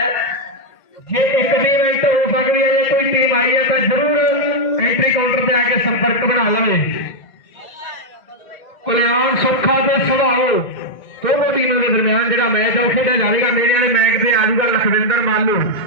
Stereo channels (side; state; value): right; late; 2.0 ms